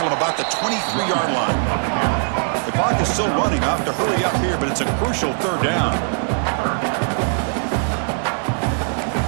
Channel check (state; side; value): silent; left; 64 dB below the other